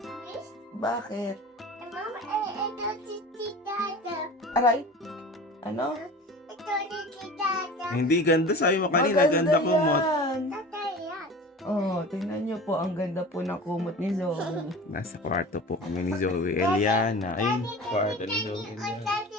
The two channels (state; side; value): normal; both; correlation 0.37